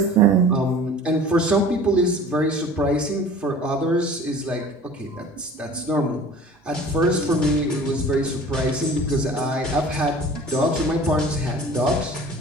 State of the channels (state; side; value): normal; both; correlation 0.44